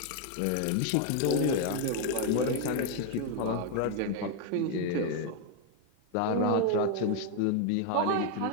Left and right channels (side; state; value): both; different; correlation 0.00